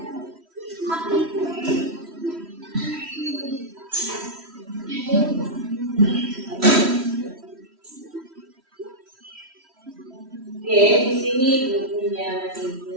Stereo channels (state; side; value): late; left; 3.1 ms